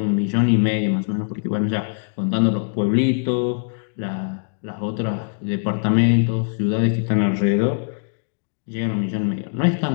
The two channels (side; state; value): right; silent; digital silence